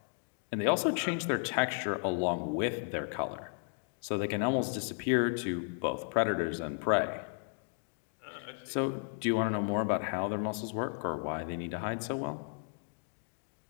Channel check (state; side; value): silent; right; 55 dB below the other